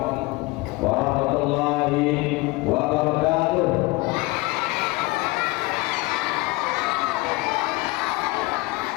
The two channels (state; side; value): quieter; right; 22.7 dB